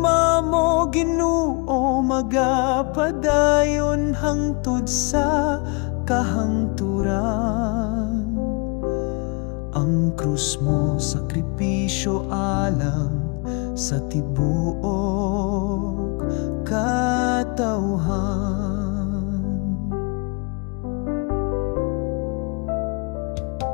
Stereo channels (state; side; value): quieter; right; 32.8 dB